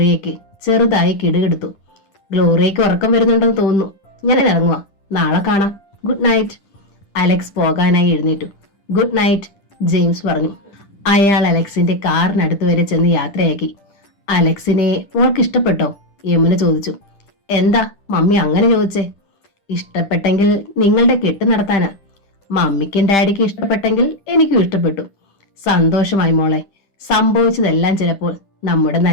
ചെറുതായി കിടുകിടുത്തു. ഗ്ലോറിയയ്ക്ക് ഉറക്കം വരുന്നുണ്ടെന്ന് തോന്നുന്നു. ഞാൻ ഇറങ്ങുക. നാളെ കാണാം. Good night. അലക്സ് പോകാനായി എഴുന്നേറ്റു. ഗുഡ് നൈറ്റ്, ജെയിംസ് പറഞ്ഞു. അയാൾ അലക്സിന്റെ കാറിനടുത്ത് വരെ ചെന്ന് യാത്രയാക്കി. അലക്സിനെ മോൾക്ക് ഇഷ്ടപ്പെട്ടോ? യമുന ചോദിച്ചു. എന്താ മമ്മി അങ്ങനെ ചോദിച്ചേ? ഇഷ്ടപ്പെട്ടെങ്കിൽ നിങ്ങളുടെ കെട്ട് നടത്താനാ. മമ്മിക്കും ഡാഡിക്കും ഇഷ്ടപ്പെട്ടെങ്കിൽ എനിക്കും ഇഷ്ടപ്പെട്ടു. സന്തോഷമായി മോളെ. സംഭവിച്ചതെല്ലാം ചിലപ്പോൾ നമ്മുടെ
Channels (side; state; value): right; late; 10 ms